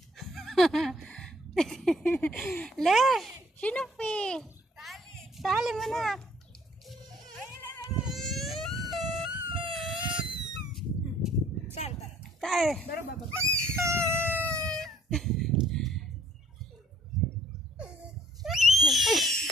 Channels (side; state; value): both; normal; correlation 0.59